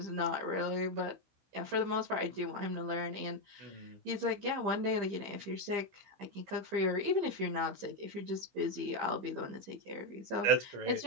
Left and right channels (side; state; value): left; late; 15 ms